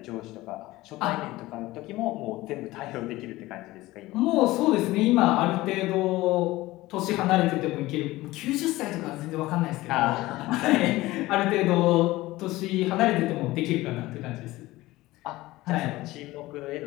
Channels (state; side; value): quieter; right; 18.4 dB